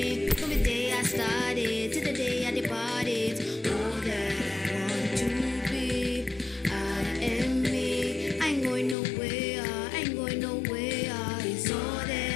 From the day I started to the day I departed. All that I want to be, I am me. I ain't going nowhere, I ain't going nowhere. It's all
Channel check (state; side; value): drops out; right; at 9.0 s